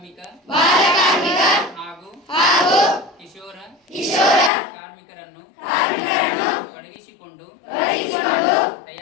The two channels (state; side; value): drops out; right; at 4.5 s